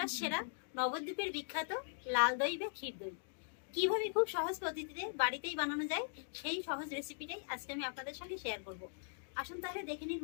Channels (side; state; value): right; silent; digital silence